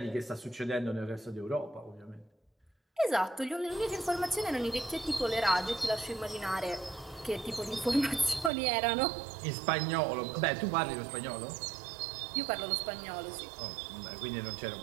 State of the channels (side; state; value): left; drops out; at 8.5 s